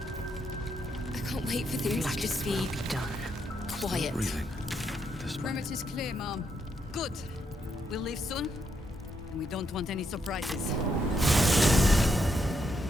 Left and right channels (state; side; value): normal; both; correlation 0.78